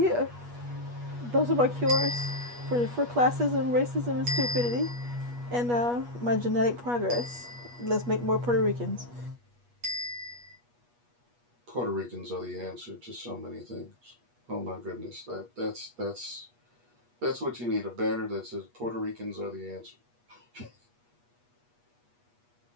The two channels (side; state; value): left; late; 8.3 ms